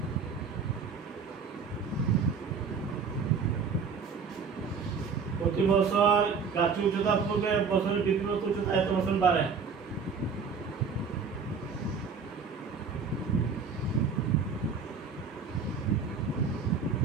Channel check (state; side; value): quieter; left; 5.6 dB